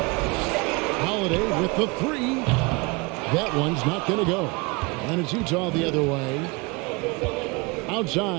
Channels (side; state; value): left; quieter; 27.2 dB